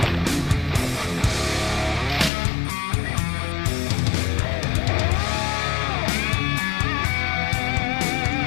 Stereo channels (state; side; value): drops out; right; at 2.3 s